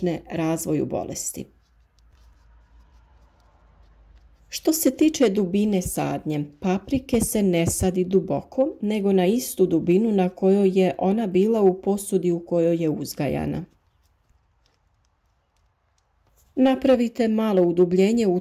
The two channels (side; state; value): both; identical; correlation 1.00